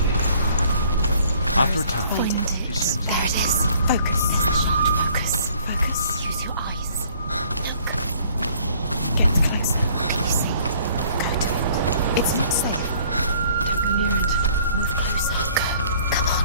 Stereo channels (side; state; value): both; inverted; correlation -0.58